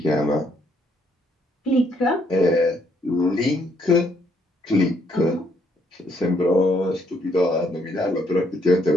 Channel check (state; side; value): normal; both; correlation 0.70